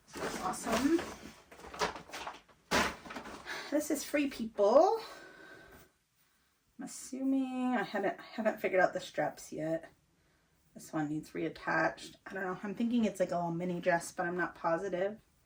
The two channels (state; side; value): identical; both; correlation 1.00